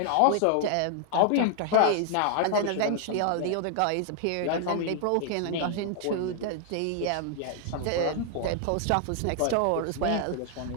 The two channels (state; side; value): different; both; correlation 0.00